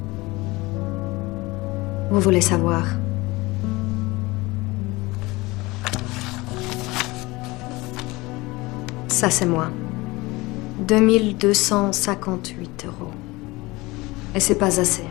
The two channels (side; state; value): right; quieter; 22.1 dB